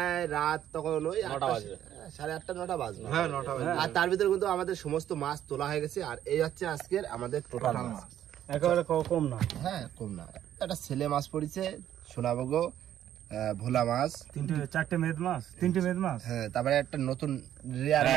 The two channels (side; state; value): left; quieter; 11.2 dB